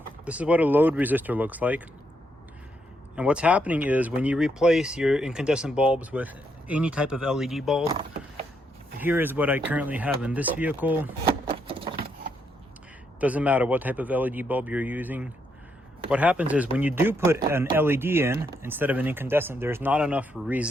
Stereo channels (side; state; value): both; normal; correlation 0.77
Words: this is what a load resistor looks like. And what's happening is when you replace your incandescent bulbs with any type of LED bulb, here is what I currently have in this vehicle. Doesn't matter what type of LED bulb you're using. What happens is when you do put an LED in instead of an incandescent, there's not enough